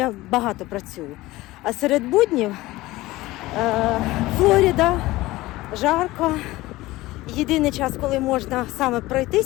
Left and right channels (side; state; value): right; quieter; 18.6 dB